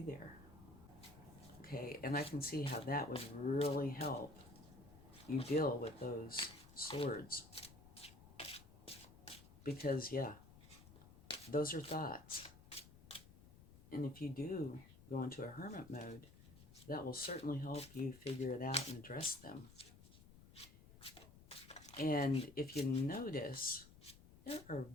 there. Okay, and I can see how that would really help you deal with those swords. Because, yeah, those are thoughts. And if you do go into a hermit mode, that will certainly help you figure it out and address them. And if you notice, there are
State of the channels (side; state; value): left; noise; rumble, 19 dB below the sound